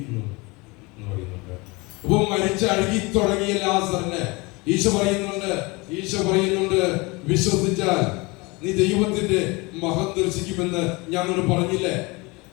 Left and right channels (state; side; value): quieter; right; 25.5 dB